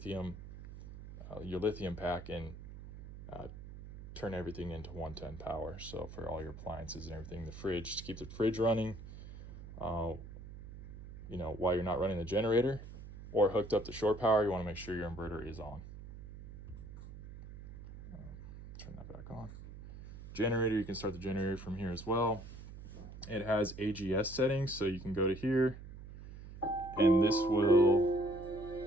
pack and turn everything into 110 power. So for all your appliances and everything, the fridge, to keep the fridge running, while you're not running the generator or hooked up to shore power, you want to make sure your inverter is on. Turn that back on. Generator, you can start the generator from here as well. It has AGS settings, so you can go to here and this will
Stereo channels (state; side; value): noise; right; hum, 13 dB below the sound